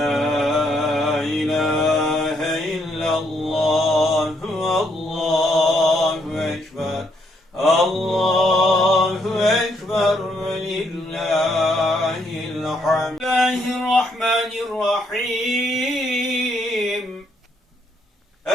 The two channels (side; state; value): both; normal; correlation 0.73